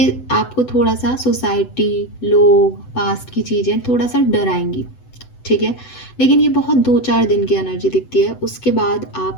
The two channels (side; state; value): right; late; 7.9 ms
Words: आपको थोड़ा सा सोसाइटी, लोग, पास्ट की चीज़ें थोड़ा सा डराएंगी, ठीक है। लेकिन ये बहुत 2-4 दिन की एनर्जी दिखती है, उसके बाद